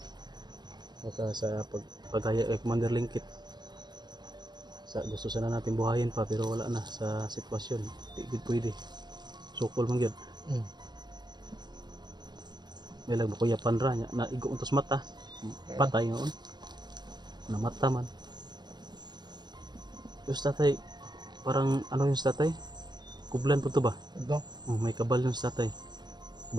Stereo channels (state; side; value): late; left; 0.21 ms